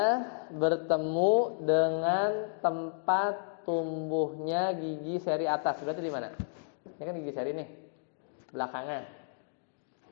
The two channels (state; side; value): silent; right; digital silence